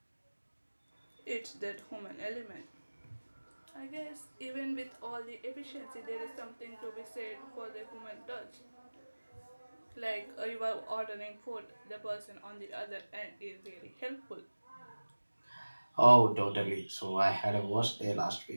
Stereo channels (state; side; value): inverted; both; correlation -1.00